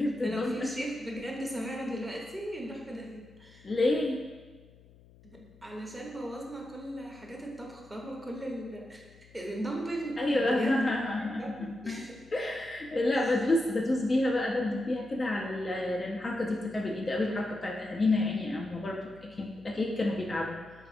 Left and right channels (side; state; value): left; noise; hum, 24 dB below the sound